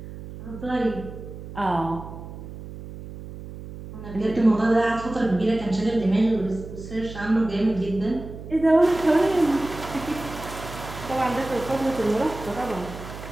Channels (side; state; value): right; noise; hum, 12 dB below the sound